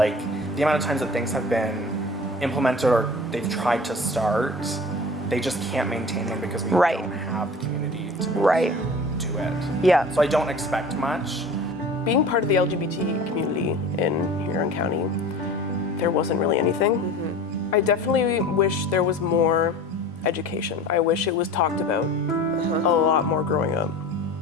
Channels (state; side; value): normal; both; correlation 0.39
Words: amount of times that things have been implemented or they've tried to start, they just can't maintain them because we don't have the community to be able to do it. Yeah. So I don't expect much. Being part of the LGBT community in Huron County, there wasn't really anything. I definitely wish there was more education. I wish it was talked about a lot more growing up.